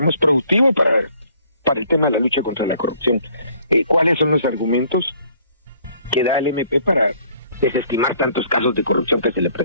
productivo para el tema de la lucha contra la corrupción. ¿Cuáles son los argumentos que da el MP para desestimar tantos casos de corrupción que se le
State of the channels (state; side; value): inverted; both; correlation -0.60